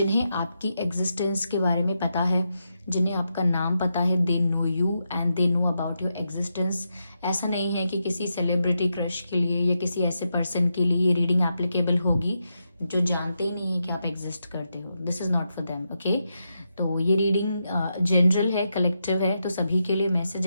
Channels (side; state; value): both; inverted; correlation -0.85